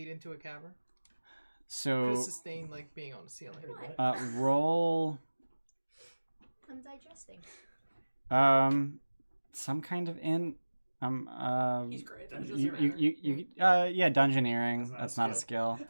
into a cavern? So Could sustain like being on the ceiling. roll I'm digesting. some kind of He's great. yeah, dungeoneering. That's That's not not a a skill.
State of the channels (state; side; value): inverted; both; correlation -1.00